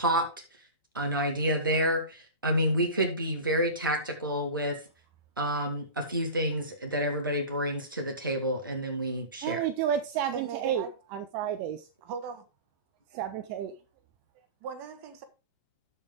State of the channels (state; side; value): inverted; both; correlation -0.31